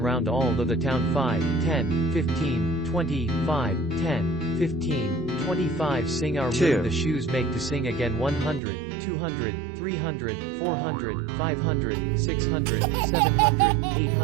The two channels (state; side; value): drops out; left; at 8.6 s